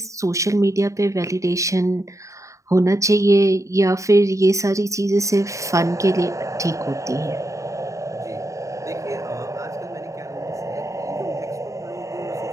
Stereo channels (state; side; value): late; left; 0.15 ms